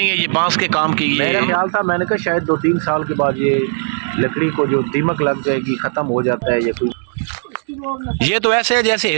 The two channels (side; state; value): left; silent; 65 dB below the other